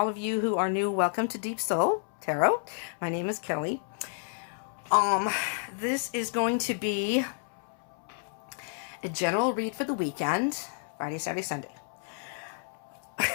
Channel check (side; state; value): right; silent; 58 dB below the other